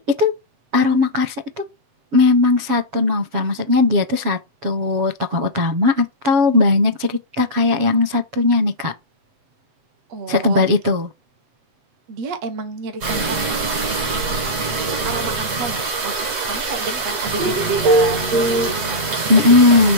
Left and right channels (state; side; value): late; left; 7.9 ms